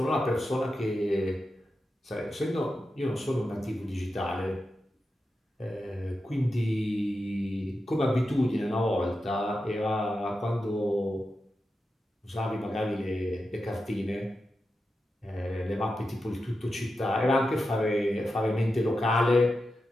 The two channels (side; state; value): both; normal; correlation 0.89